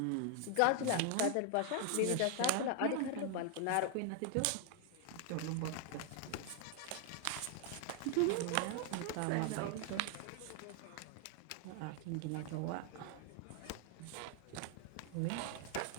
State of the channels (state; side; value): different; both; correlation 0.00